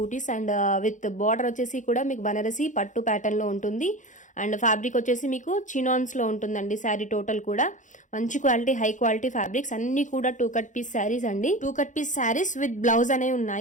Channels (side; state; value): right; late; 0.36 ms